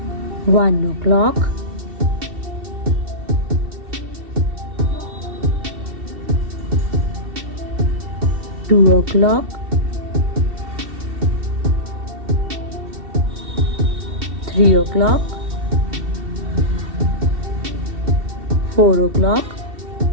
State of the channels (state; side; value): late; left; 2.7 ms